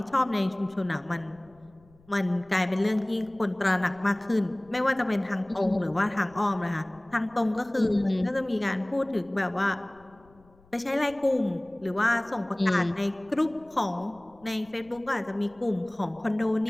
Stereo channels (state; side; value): noise; left; rumble, 29 dB below the sound